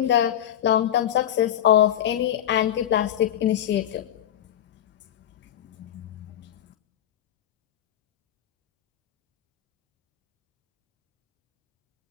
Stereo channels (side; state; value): right; quieter; 10.9 dB